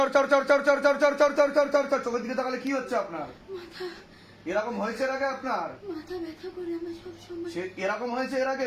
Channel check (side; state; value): both; identical; correlation 1.00